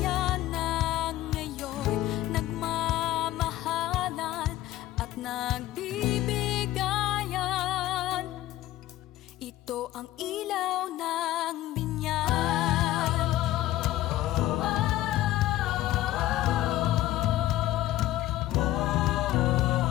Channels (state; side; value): quieter; right; 15.0 dB